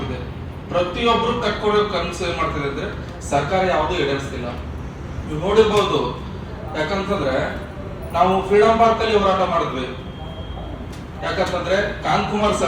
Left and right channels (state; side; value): identical; both; correlation 1.00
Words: ಪ್ರತಿಯೊಬ್ರು ಕಟ್ಕೊಡೋ ಕನ್ಸು ಏನ್ ಮಾಡ್ತಿದೆ ಅಂದ್ರೆ ಸರ್ಕಾರ ಯಾವುದೂ ಈಡೇರಿಸ್ತಿಲ್ಲ. ನೀವು ನೋಡಿರ್ಬೋದು, ಯಾಕಂತಂದ್ರೆ ನಾವು ಫ್ರೀಡಂ ಪಾರ್ಕ್ ಅಲ್ಲಿ ಹೋರಾಟ ಮಾಡಿದ್ವಿ. ಯಾಕಂತಂದ್ರೆ ಕಾಂತಕುಮಾರ್